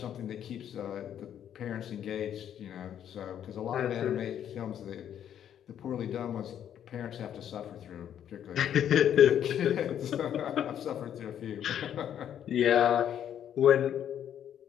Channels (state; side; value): quieter; right; 9.8 dB